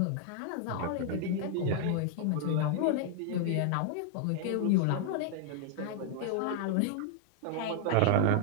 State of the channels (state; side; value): different; both; correlation 0.00